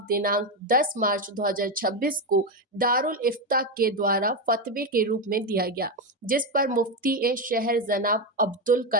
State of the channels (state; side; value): normal; both; correlation 0.10